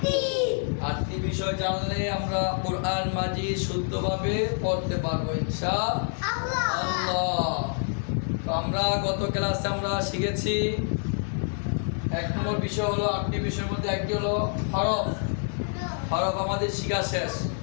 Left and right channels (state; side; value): silent; right; 60 dB below the other